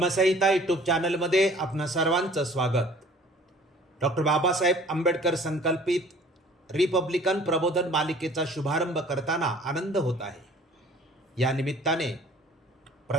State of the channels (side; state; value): both; normal; correlation 0.51